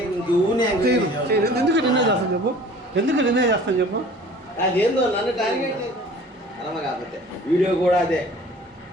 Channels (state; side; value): normal; both; correlation 0.47